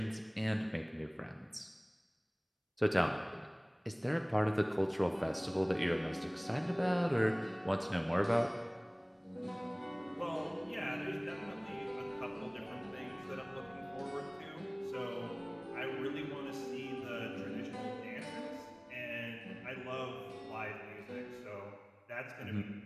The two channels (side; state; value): both; identical; correlation 1.00